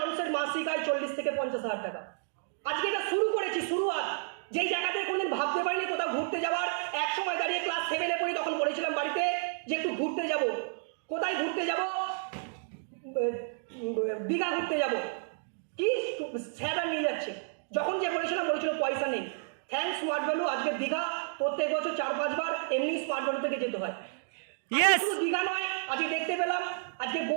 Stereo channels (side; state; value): left; silent; digital silence